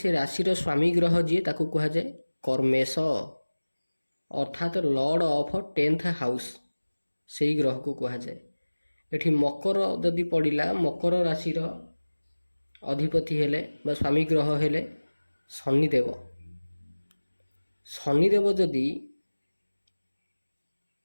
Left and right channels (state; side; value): inverted; both; correlation -1.00